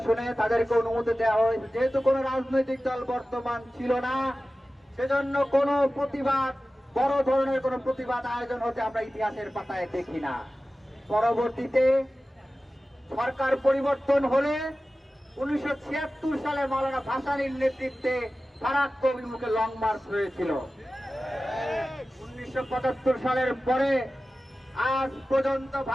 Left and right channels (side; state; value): both; normal; correlation 0.95